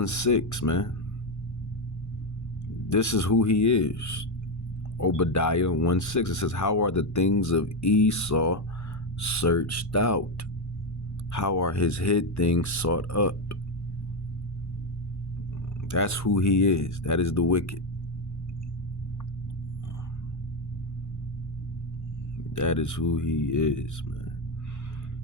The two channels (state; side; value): late; right; 1.5 ms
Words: man. This is who he is. Obadiah 1:6. It says, how are the things of Esau searched out? How are his hid things sought up? That's who he is. That is the wicked. That is who he is, man.